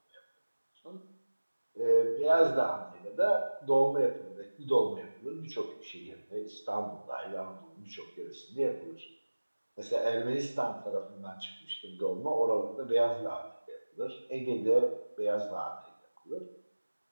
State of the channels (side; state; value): both; inverted; correlation -1.00